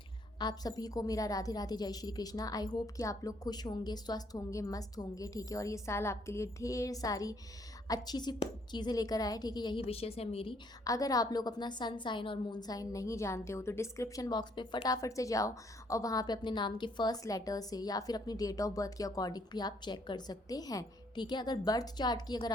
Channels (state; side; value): normal; both; correlation 0.67